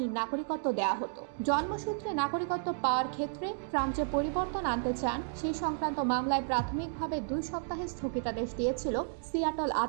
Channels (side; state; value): left; silent; digital silence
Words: নাগরিকত্ব দেওয়া হতো। জন্মসূত্রে নাগরিকত্ব পাওয়ার ক্ষেত্রে ট্রাম্প যে পরিবর্তন আনতে চান সেই সংক্রান্ত মামলায় প্রাথমিকভাবে 2 সপ্তাহের স্থগিতাদেশ দিয়েছিল সিয়াটল